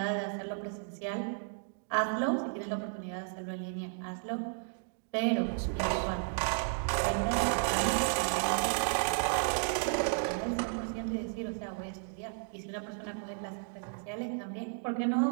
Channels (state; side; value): silent; left; 55 dB below the other